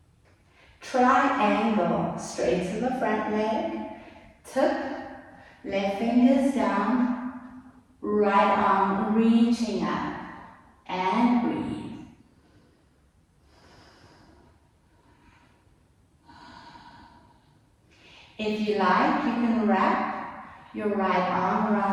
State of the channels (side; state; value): both; identical; correlation 1.00